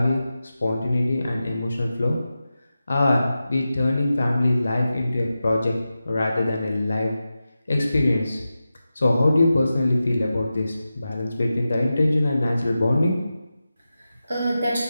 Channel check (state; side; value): inverted; both; correlation -0.93